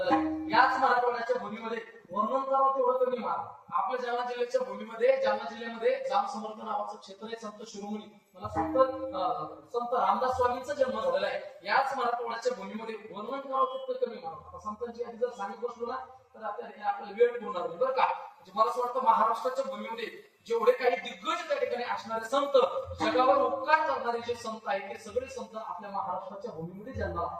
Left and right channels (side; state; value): both; identical; correlation 1.00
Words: आहे. याच मराठवाड्याच्या भूमीमध्ये वर्णन करावं तेवढं कमी मार. आपल्या जालना जिल्ह्याच्या भूमीमध्ये जालना जिल्ह्यामध्ये जाम समर्थ नावाचं क्षेत्र आहे, संत शिरोमणी मला सांगतं संत रामदास स्वामींचा जन्म झालेला आहे. याच मराठवाड्याच्या भूमीमध्ये वर्णन करावं तितकं कमी मार. आता संतांची आधी जर सांगत बसलो ना तर आपल्याला वेळ पुरणार नाही बरं का. म्हणजे मला असं वाटतं महाराष्ट्राच्या भूमीमध्ये जेवढे काही दिग्गज त्या ठिकाणी असणारे संत जगावर उपकार करणारे जे संत आहेत ते सगळे संत आपल्या महाराष्ट्राच्या भूमीमध्ये जन्माला